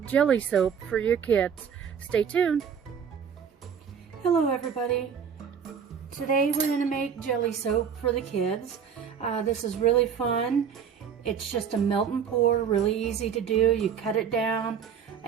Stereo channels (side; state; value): left; quieter; 7.4 dB